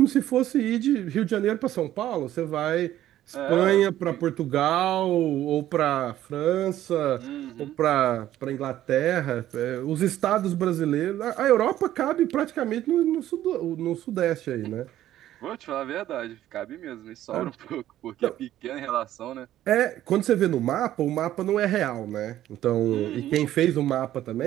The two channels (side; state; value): left; quieter; 13.0 dB